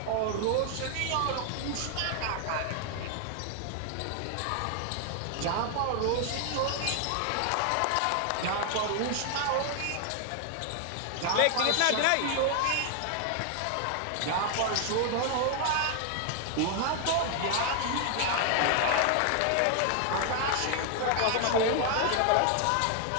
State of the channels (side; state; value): both; different; correlation 0.00